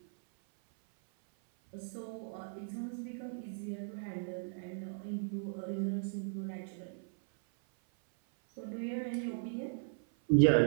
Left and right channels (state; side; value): silent; left; 53 dB below the other